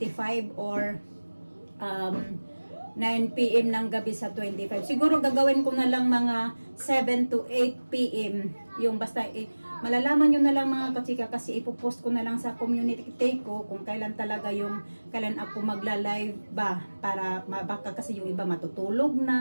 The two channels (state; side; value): inverted; both; correlation -1.00